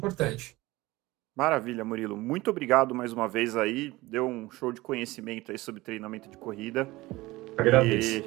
Maravilha, Murilo. Muito obrigado mais uma vez aí. Deu um show de conhecimento aí sobre treinamento de corrida. Agradeço.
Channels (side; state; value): left; quieter; 19.7 dB